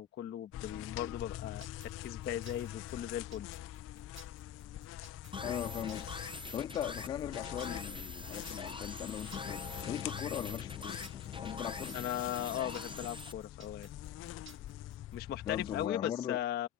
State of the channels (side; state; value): right; quieter; 9.4 dB